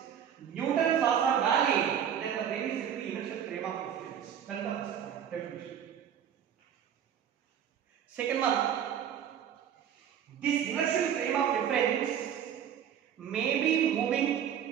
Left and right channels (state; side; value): quieter; left; 9.1 dB